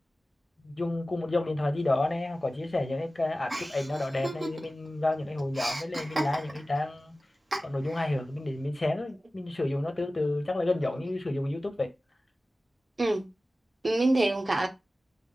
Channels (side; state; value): both; normal; correlation 0.96